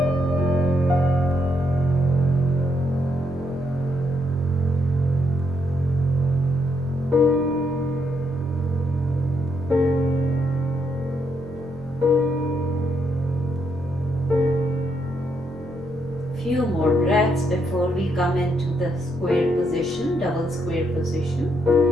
Few more breaths before we come into the square position, double square position.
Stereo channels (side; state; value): both; normal; correlation 0.77